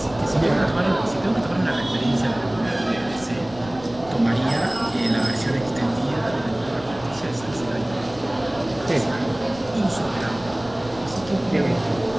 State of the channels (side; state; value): left; noise; rumble, 18 dB below the sound